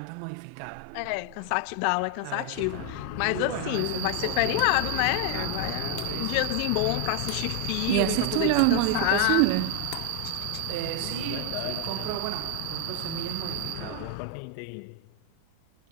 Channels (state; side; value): different; both; correlation 0.00